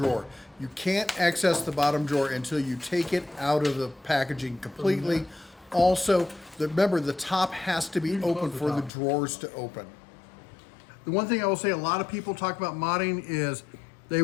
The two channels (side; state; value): right; drops out; at 8.9 s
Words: You can't access the bottom drawer until you take it out of the packaging completely. Also, remember, the top has to be open for the drawers to open. The one thing I will say, a lot of people talk about modding is they